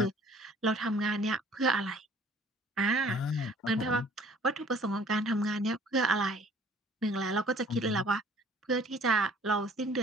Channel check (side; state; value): both; normal; correlation 0.54